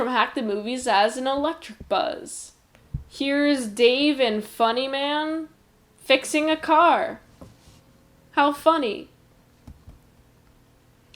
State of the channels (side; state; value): both; identical; correlation 1.00